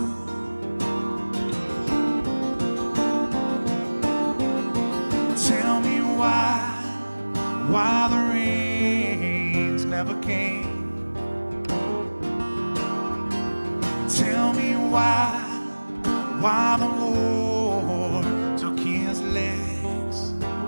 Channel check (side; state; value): both; inverted; correlation -1.00